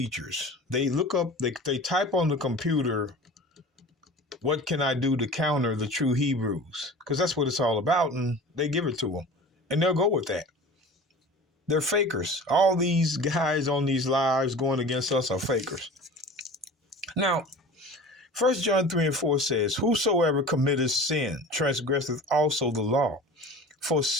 They look up, they type on the computer, what can I do to counter the true Hebrews? Because that's what it's all about, and they give it to them. And they'll go with that. They're fakers. All these guys on these lives going against us are fakers. Now, 1 John 3 and 4 says, whosoever committeth sin transgresseth also the law. For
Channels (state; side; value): normal; both; correlation 0.38